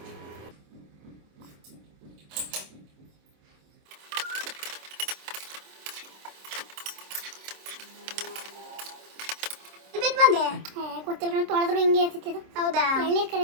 ಬಂದೆ ಗೊತ್ತಿಲ್ಲ, ತೊಳೆದ್ರು ಹಿಂಗೆ ಇರ್ತಿತ್ತು. ಹೌದಾ? ಎಳ್ನೀರು ಕರೆ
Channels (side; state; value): left; late; 26 ms